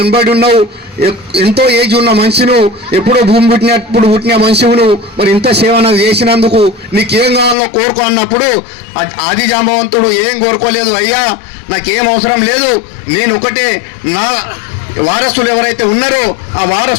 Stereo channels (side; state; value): right; drops out; at 7.6 s